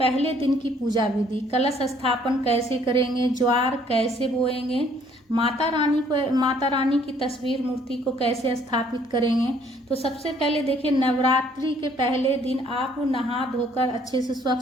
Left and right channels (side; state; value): both; normal; correlation 0.62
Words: दिन की पूजा विधि, कलश स्थापन कैसे करेंगे, ज्वार कैसे बोएंगे, माता रानी की तस्वीर मूर्ति को कैसे स्थापित करेंगे। तो सबसे पहले देखिए, नवरात्रि के पहले दिन आप नहा धोकर अच्छे से